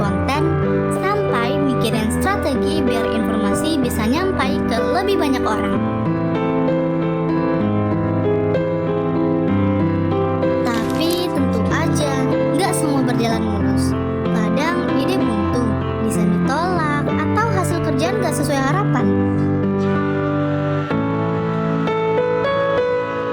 konten, sampai mikirin strategi biar informasi bisa nyampai ke lebih banyak orang. Tapi tentu aja, nggak semua berjalan mulus. Kadang ide buntu, desain ditolak, atau hasil kerjaan gak sesuai harapan.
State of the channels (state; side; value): identical; both; correlation 1.00